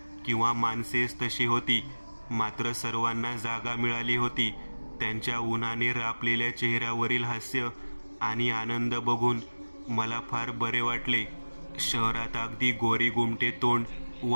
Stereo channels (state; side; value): inverted; both; correlation -1.00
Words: किंवा माणसेच तशी होती, मात्र सर्वांना जागा मिळाली होती. त्यांच्या उन्हाने रापलेल्या चेहऱ्यावरील हास्य आणि आनंद बघून मला फार बरे वाटले. शहरात अगदी गोरी गुमटे तोंड व